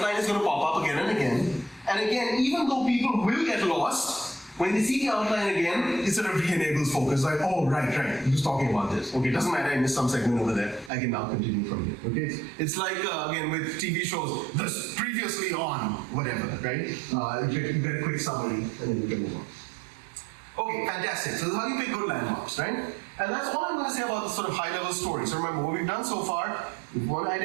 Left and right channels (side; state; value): left; drops out; at 10.9 s